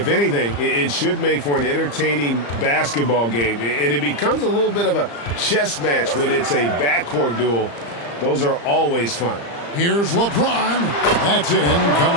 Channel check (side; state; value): right; late; 35 ms